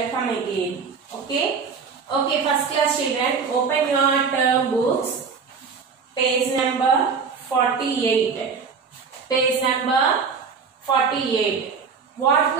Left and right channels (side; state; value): left; quieter; 5.6 dB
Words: again. Okay. Okay. First class children, open your term books. Page number 48. Page number 48. What